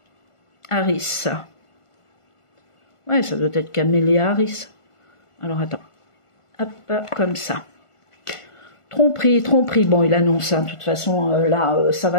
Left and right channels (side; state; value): right; late; 1.5 ms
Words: Harris? Ouais, ça doit être Camélia Harris. Alors, attends. Hop, comme ça. Tromperie. Bon, il annonce, hein, de toute façon, là, ça